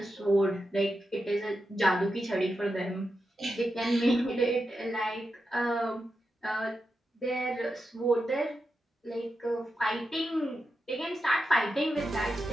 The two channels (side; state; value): both; normal; correlation 0.88